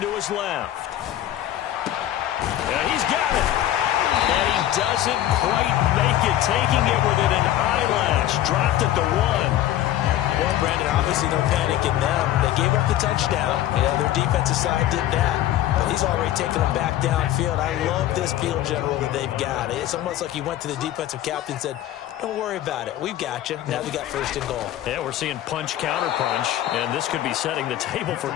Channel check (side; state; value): right; quieter; 13.0 dB